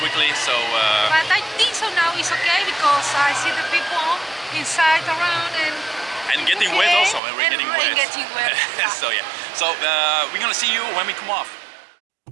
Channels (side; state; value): left; drops out; at 7.2 s